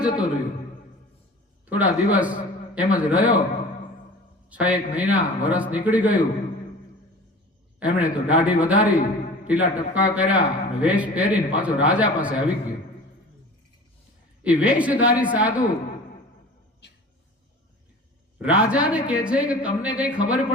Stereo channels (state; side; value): normal; both; correlation 0.40